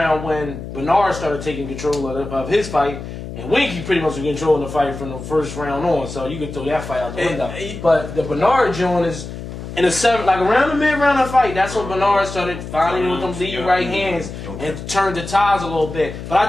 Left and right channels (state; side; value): noise; left; hum, 10 dB below the sound